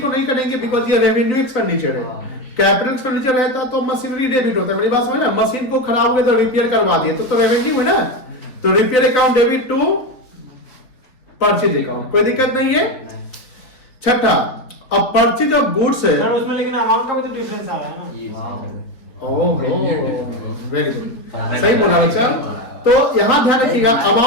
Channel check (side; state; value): right; late; 4.0 ms